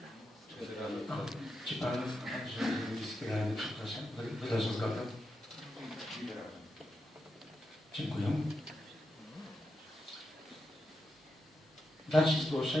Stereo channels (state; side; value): normal; both; correlation 0.87